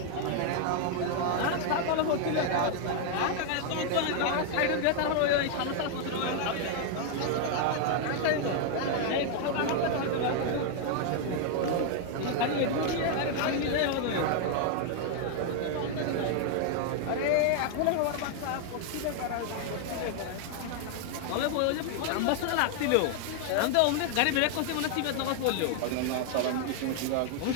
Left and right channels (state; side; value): different; both; correlation 0.00